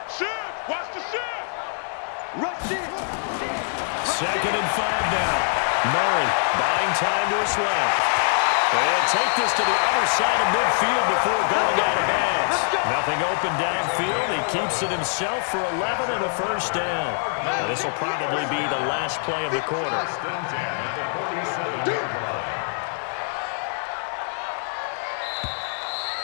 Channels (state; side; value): silent; right; digital silence